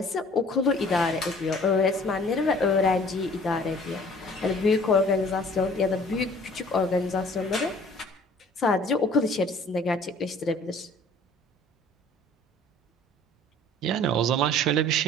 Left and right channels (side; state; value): both; normal; correlation 0.52